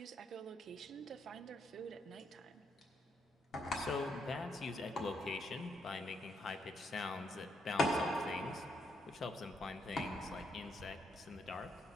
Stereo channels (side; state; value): both; normal; correlation 0.76